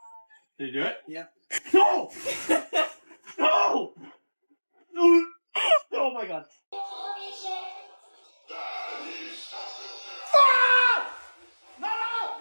Did you do it? Yeah. No! No! Oh my god.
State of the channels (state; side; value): inverted; both; correlation -1.00